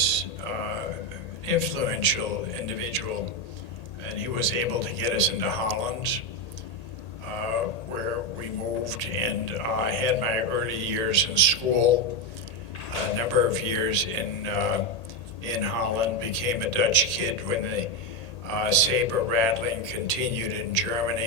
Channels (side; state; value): right; late; 1.8 ms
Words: an influential individual, and he was able to get us into Holland, where we moved, and I had my early years in school, a number of years in Holland, became a Dutch kid when the saber rattling continued in